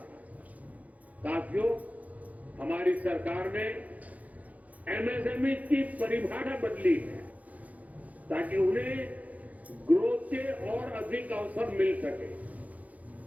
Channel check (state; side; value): late; left; 0.073 ms